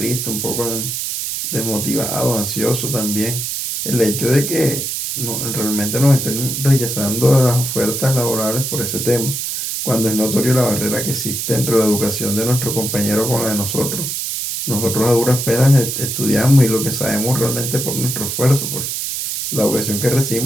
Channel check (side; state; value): right; noise; hiss, 3 dB below the sound